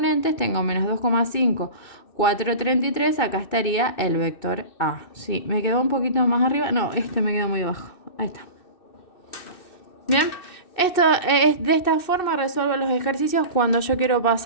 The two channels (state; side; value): late; right; 2.6 ms